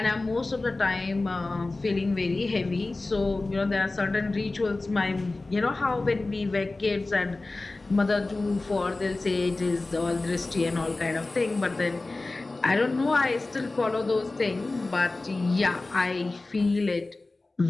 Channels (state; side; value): quieter; right; 3.2 dB